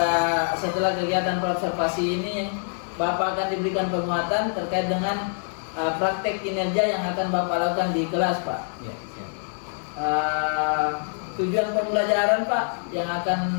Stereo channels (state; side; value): silent; right; 62 dB below the other